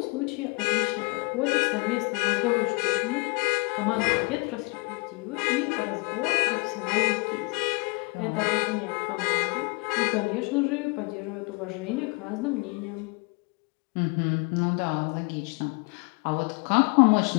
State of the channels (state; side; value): quieter; right; 29.7 dB